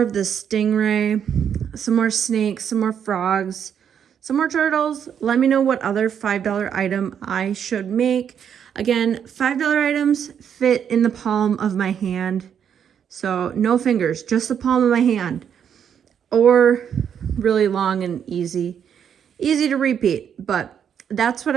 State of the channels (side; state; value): left; quieter; 8.3 dB